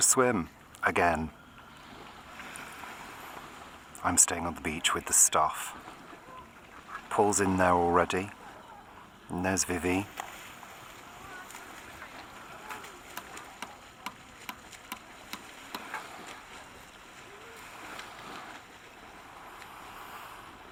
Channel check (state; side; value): identical; both; correlation 1.00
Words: swim again. I'm staying on the beach with the stuff. Paul's in there already. And there's Vivi.